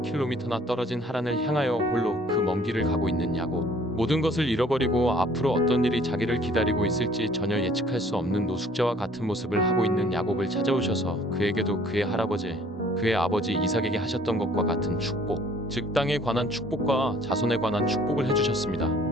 떨어진 하란을 향하여 홀로 그 먼 길을 가고 있는 야곱. 모든 것을 잃어버리고 앞으로 어떤 일이 자기를 기다리고 있을지 전혀 예측할 수 없는 노숙자와 같은 모습을 하고 있는 야곱을 찾아오셔서 그에게도 그의 할아버지, 그의 아버지 이삭에게 하셨던 것과 같은 축복, 즉 땅에 관한 축복과 자손에 관한 축복을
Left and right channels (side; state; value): both; normal; correlation 0.57